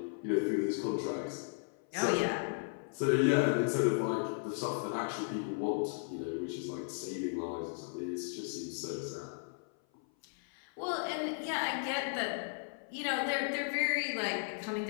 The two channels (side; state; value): right; silent; 54 dB below the other